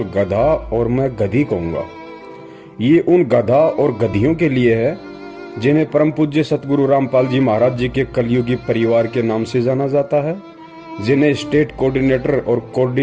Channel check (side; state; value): both; identical; correlation 1.00